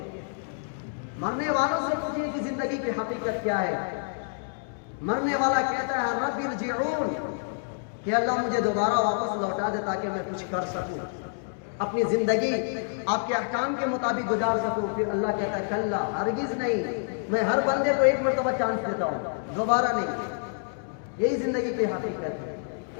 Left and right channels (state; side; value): silent; right; digital silence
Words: مرنے والوں سے پوچھئے کہ زندگی کی حقیقت کیا ہے. مرنے والا کہتا ہے رب ارجعون، کہ اللہ مجھے دوبارہ واپس لوٹا دے تاکہ میں کچھ کر سکوں، اپنی زندگی آپ کے احکام کے مطابق گزار سکوں. پھر اللہ کہتا ہے کلا، ہرگز نہیں، میں ہر بندے کو 1 مرتبہ چانس دیتا ہوں، دوبارہ نہیں. یہی زندگی کی حقیقت